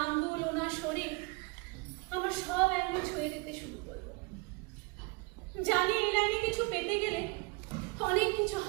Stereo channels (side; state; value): left; quieter; 28.1 dB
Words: আঙ্গুল, ওনার শরীর আমার সব অ্যাঙ্গেল ছুঁয়ে দিতে শুরু করলো। জানি এই লাইনে কিছু পেতে গেলে অনেক কিছু